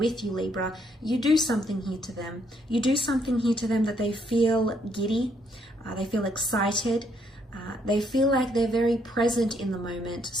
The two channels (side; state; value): both; normal; correlation 0.71